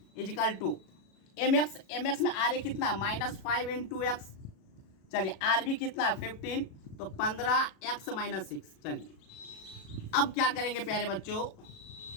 equal to M x में आर ए कितना, -5 इंटू एक्स। चलिए आर बी कितना, 15, तो 15x माइनस 6। चलिए अब क्या करेंगे प्यारे बच्चों,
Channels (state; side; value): late; right; 37 ms